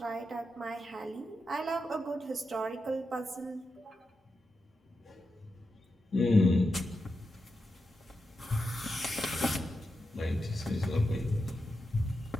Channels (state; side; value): normal; both; correlation 0.88